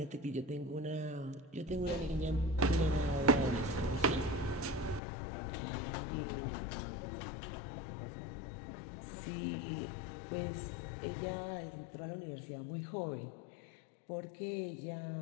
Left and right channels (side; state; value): right; drops out; at 5.0 s